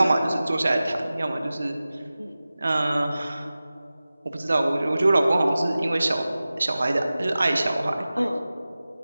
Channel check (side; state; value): both; inverted; correlation -0.96